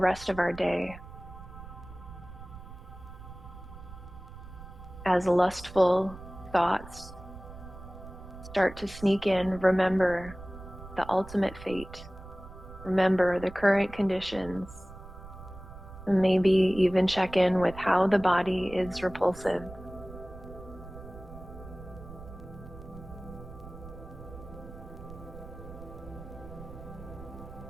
of our day. As lustful thoughts start to sneak in, remember the ultimate fate. Remember the current conditions, and maybe even check in with how the body is repulsive.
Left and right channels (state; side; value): noise; right; rumble, 15 dB below the sound